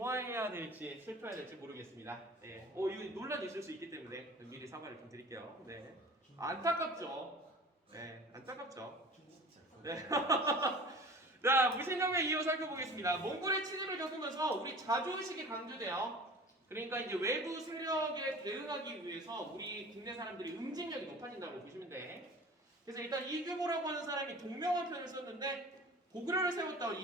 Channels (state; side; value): normal; both; correlation 0.41